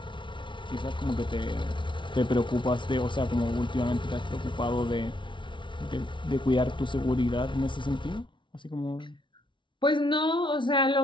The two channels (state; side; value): late; right; 0.24 ms